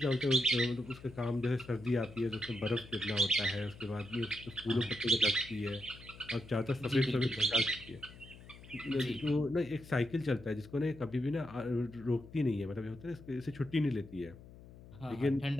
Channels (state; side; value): noise; left; hum, 18 dB below the sound